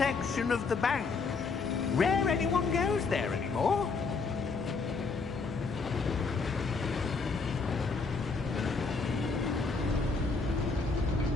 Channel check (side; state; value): right; quieter; 4.4 dB